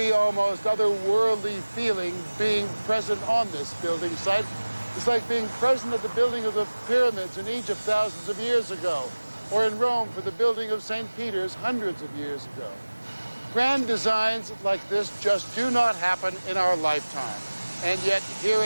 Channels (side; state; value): both; inverted; correlation -1.00